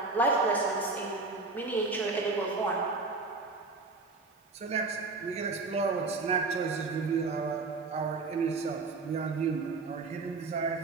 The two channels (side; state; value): left; quieter; 3.9 dB